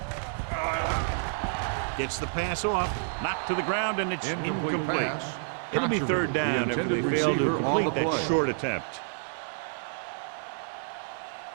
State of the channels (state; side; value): silent; left; digital silence